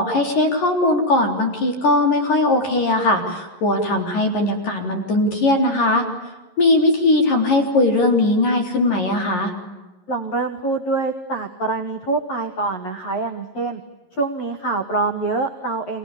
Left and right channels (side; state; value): right; late; 11 ms